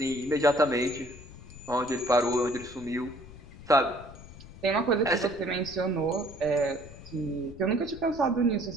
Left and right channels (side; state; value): left; noise; rumble, 17 dB below the sound